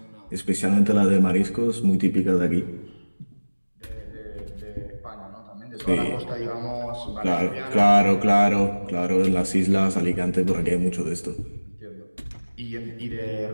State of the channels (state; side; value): inverted; both; correlation -1.00